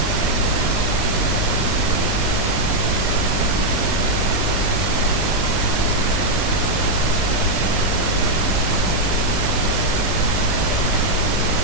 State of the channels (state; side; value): normal; both; correlation -0.01